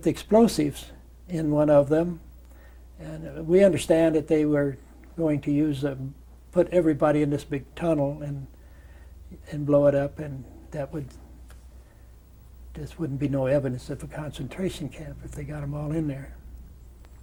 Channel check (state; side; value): identical; both; correlation 1.00